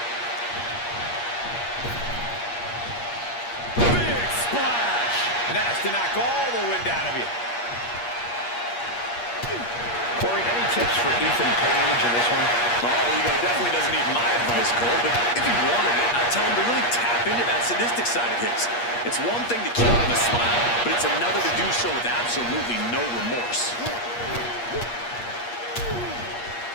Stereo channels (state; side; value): late; right; 8.4 ms